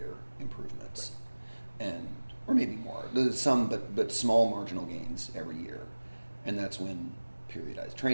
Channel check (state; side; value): inverted; both; correlation -1.00